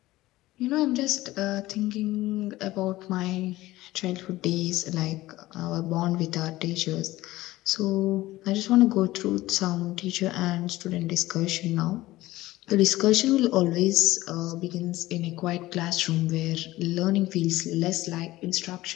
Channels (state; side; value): quieter; right; 17.4 dB